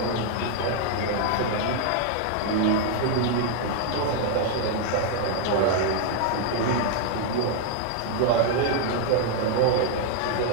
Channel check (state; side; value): different; both; correlation 0.00